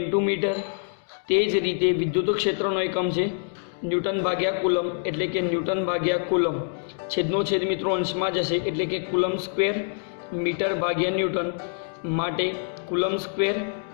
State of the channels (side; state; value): right; silent; digital silence